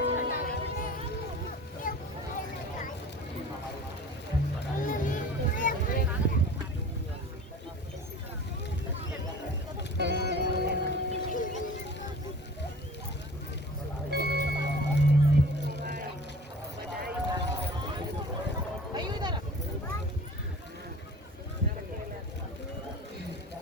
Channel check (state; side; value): normal; both; correlation 0.42